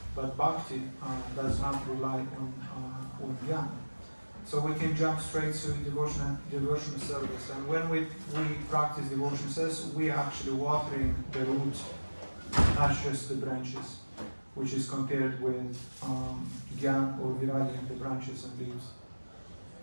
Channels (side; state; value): both; inverted; correlation -1.00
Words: but bhakti does not rely on jnana. So we can jump straight to devotional service. And when we practice devotional service, we are actually watering the root, not just the branches, which is compared with Gyan or Viragi, the branches and leaves.